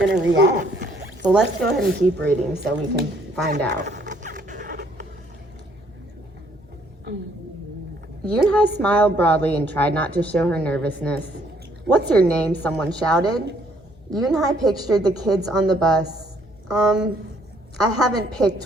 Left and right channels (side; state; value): both; normal; correlation 0.65